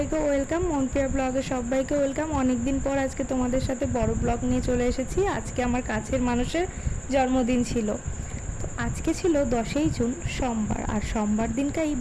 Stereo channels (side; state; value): both; identical; correlation 1.00